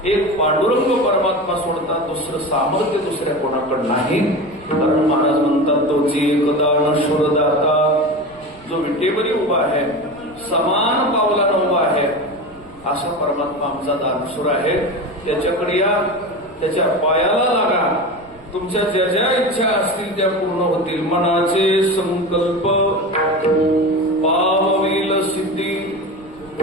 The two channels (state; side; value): noise; right; rumble, 25 dB below the sound